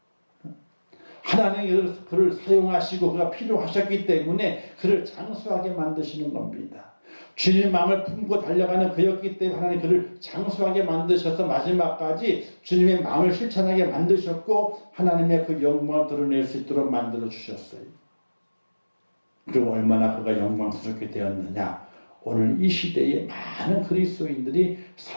하나님이 그를 사용하시고 그가 필요하셨기 때문에 그를 장수하게 만드시는 겁니다. 주님의 마음을 품고 달려가는 그였기 때문에 하나님 그를 장수하게 만드셔서 마지막까지 주님의 마음을 실천하게 만드셨고 하나님의 그 영광을 드러낼 수 있도록 만들어 주셨어요. 그리고 얼마나 그가 영광스럽게 되었느냐. 오늘 이 시대에 많은 그리스도인들이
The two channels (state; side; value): inverted; both; correlation -1.00